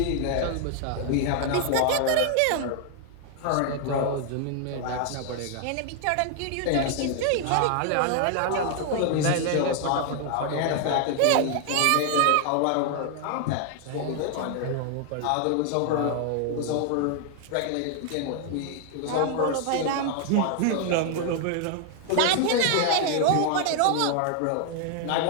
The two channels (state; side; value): different; both; correlation 0.00